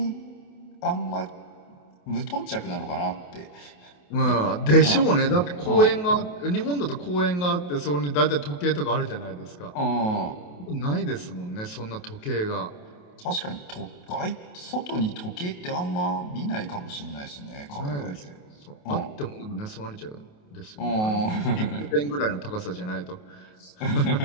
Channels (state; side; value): late; right; 28 ms